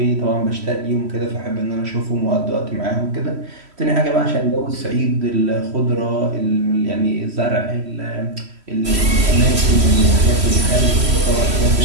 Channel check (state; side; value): late; left; 3.1 ms